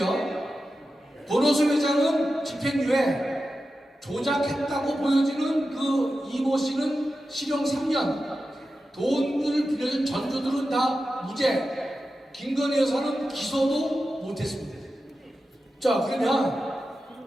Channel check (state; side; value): normal; both; correlation 0.92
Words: 권오수 회장은 집행유예, 조작했다고 보여지는 그 이모 씨는 실형 3년, 돈을 빌려준 전주들은 다 무죄, 김건희 여사는 기소도 못했습니다. 자, 그러면